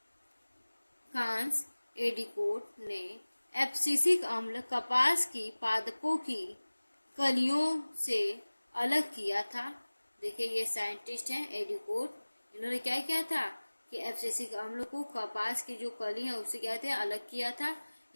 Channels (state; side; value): inverted; both; correlation -1.00